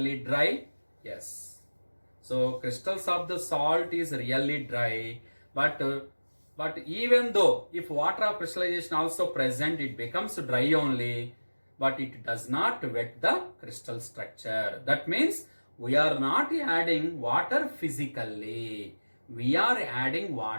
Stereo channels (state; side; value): inverted; both; correlation -1.00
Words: dry? Yes. So crystals of the salt is really dry, but even though if water of crystallization also present, it becomes dry only, but it does not wet the crystal structure. That means we are not adding water physically, we are adding